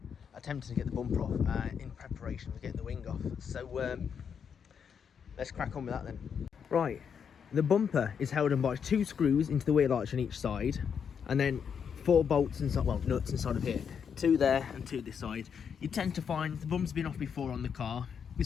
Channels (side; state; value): right; quieter; 7.1 dB